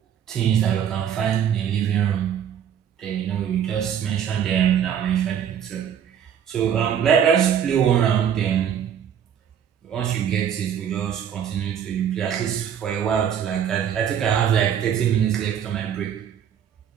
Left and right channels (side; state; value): left; quieter; 8.9 dB